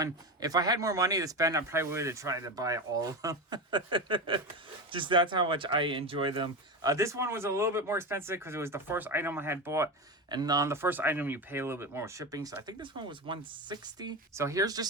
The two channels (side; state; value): both; normal; correlation 0.19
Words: If I had more money to spend, I probably would have tried to buy all of them. Just that's how much I enjoy them. This one was a little bit more expensive because it was the first item I had bought. And on the first item, you pay a little bit more shipping. So I think this one was $160. So here's